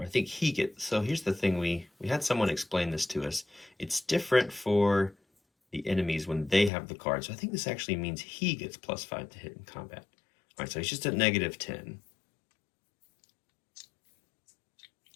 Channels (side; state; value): right; drops out; at 6.7 s